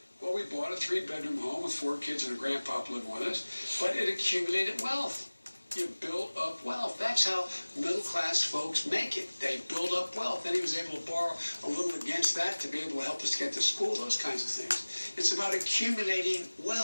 Well, we bought a 3-bedroom home with 4 kids and a grandpa living with us, but it accumulated wealth. You build up wealth. That's how middle-class folks make it. They build up wealth. Then he was able to borrow a little against that to be able to help us get to school, those kinds of things. It's about accumulating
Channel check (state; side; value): inverted; both; correlation -1.00